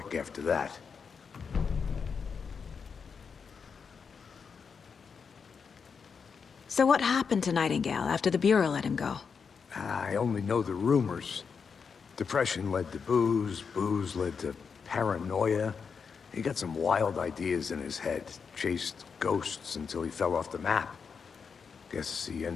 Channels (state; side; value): quieter; right; 5.9 dB